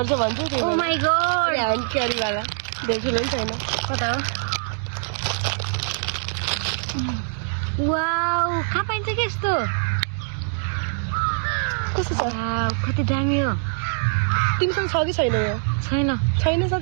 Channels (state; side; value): silent; left; digital silence